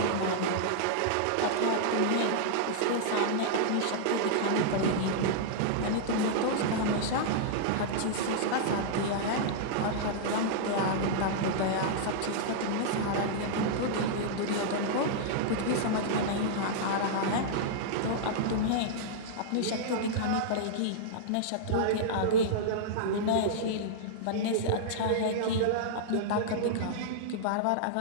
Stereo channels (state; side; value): different; both; correlation -0.02